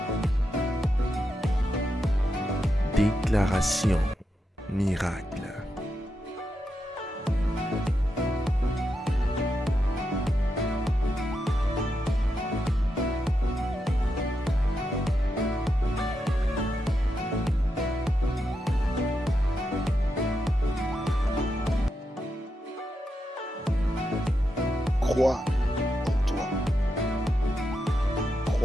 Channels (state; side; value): normal; both; correlation 0.86